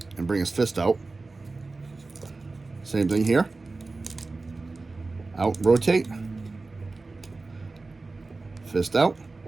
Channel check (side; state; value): left; quieter; 3.6 dB